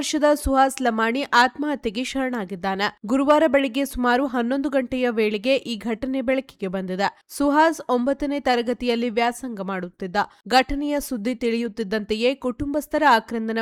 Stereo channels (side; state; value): both; identical; correlation 1.00